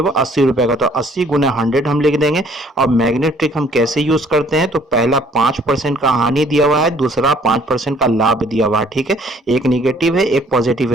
हुआ? 80 रुपए का, तो 80 गुने 100 हम लिख देंगे। और मैग्नेट ट्रिक हम कैसे यूज करते हैं? तो पहला 5% का हानि दिया हुआ है, दूसरा 5% का लाभ दिया हुआ है। ठीक है, एक निगेटिव है एक पॉजिटिव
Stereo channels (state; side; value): normal; both; correlation 0.59